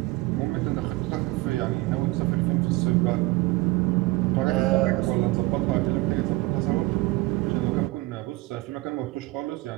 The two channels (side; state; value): left; quieter; 20.9 dB